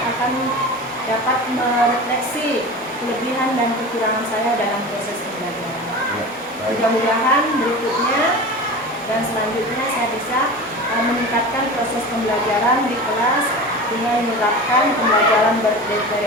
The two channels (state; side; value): normal; both; correlation 0.32